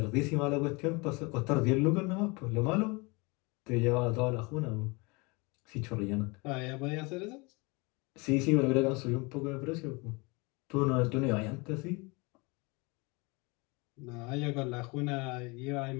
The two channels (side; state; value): right; quieter; 27.5 dB